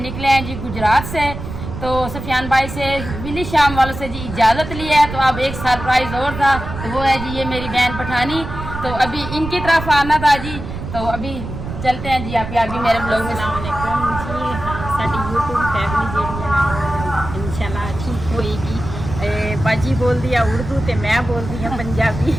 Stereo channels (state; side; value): noise; right; rumble, 8 dB below the sound